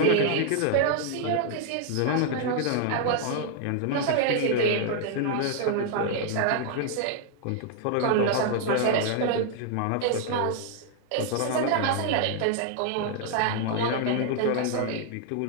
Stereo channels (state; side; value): different; both; correlation 0.00